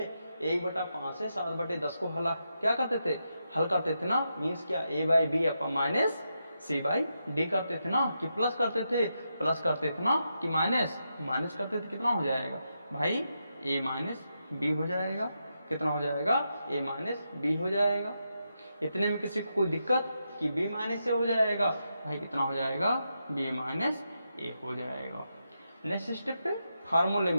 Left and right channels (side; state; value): both; inverted; correlation -0.85